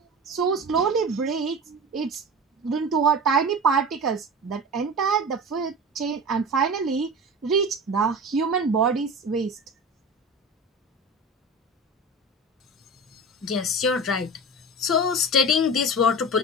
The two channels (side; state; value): both; normal; correlation 0.31